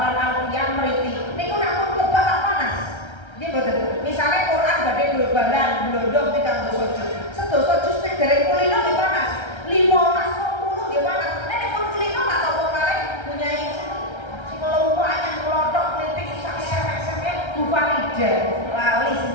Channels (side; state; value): right; late; 1.3 ms